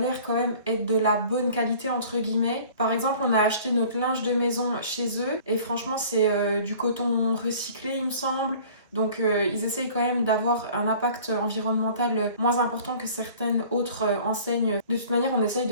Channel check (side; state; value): both; inverted; correlation -0.48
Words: quand même être de la bonne qualité entre guillemets. Par exemple, on a acheté notre linge de maison chez eux et franchement, c'est du coton recyclé, il me semble. Donc ils essayent quand même d'avoir un impact environnemental moins important que certaines autres enseignes. De toute manière, on essaye